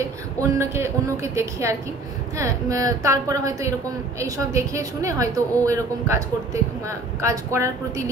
অন্যকে দেখে আর কি। হ্যাঁ, তারপরে হয়তো এরকম এইসব দেখে শুনে হয়তো ও এরকম কাজ করার প্রতি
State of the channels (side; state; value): left; quieter; 3.2 dB